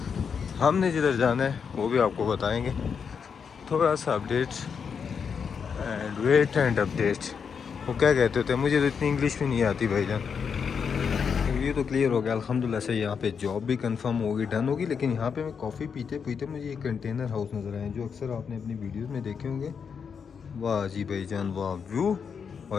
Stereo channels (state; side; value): quieter; right; 6.5 dB